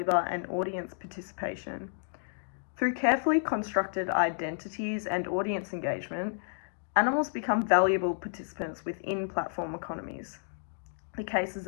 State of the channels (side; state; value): right; silent; digital silence